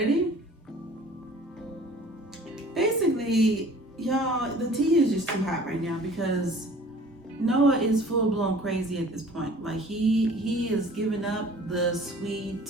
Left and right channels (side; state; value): both; normal; correlation 0.49